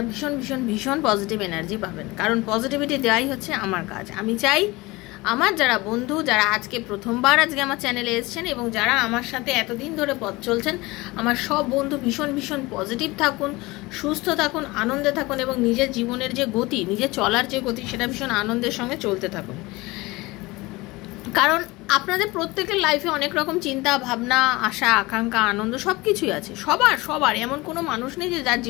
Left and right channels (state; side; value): quieter; right; 21.9 dB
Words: ভীষণ ভীষণ ভীষণ পজিটিভ এনার্জি পাবেন, কারণ পজিটিভিটি দেওয়াই হচ্ছে আমার কাজ। আমি চাই আমার যারা বন্ধু, যারা আজকে প্রথমবার আজকে আমার চ্যানেলে এসেছেন এবং যারা আমার সাথে এতদিন ধরে পথ চলছেন, আমার সব বন্ধু ভীষণ ভীষণ পজিটিভ থাকুন, সুস্থ থাকুন, আনন্দে থাকুন এবং নিজের জীবনের যে গতি, নিজের চলার যে গতি, সেটা ভীষণ আনন্দের সঙ্গে চলতে থাকুন। কারণ আপনাদের প্রত্যেকের লাইফে অনেক রকম চিন্তা ভাবনা, আশা আকাঙ্ক্ষা, আনন্দ সব কিছুই আছে। সবার এমন কোনো মানুষ নেই যে যার